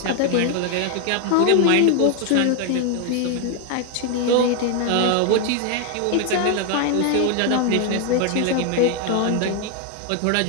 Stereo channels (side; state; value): both; different; correlation 0.01